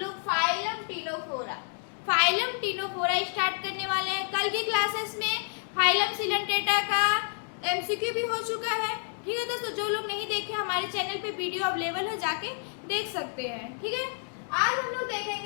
फाइलम टिनोफोरा स्टार्ट करने वाले हैं। कल की क्लासेस में फाइलम सिलेंट्रेटा का एमसीक्यू भी हो चुका है। ठीक है दोस्तों, जो लोग नहीं देखे हमारे चैनल पे वीडियो अवेलेबल है, जाके देख सकते हैं। ठीक है, आज हम लोग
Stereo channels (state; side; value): silent; right; 58 dB below the other